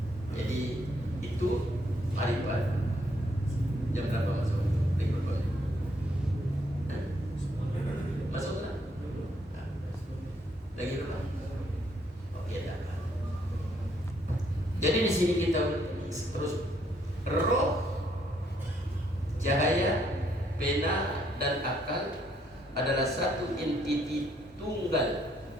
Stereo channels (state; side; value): normal; both; correlation 0.70